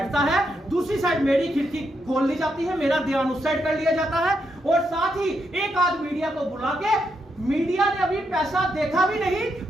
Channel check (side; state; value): both; normal; correlation 0.81